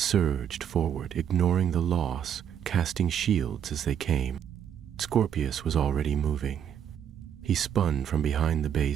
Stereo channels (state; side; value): quieter; left; 9.1 dB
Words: forward, ignoring the loss, casting shields as they came. Scorpius was already moving. He spun from behind the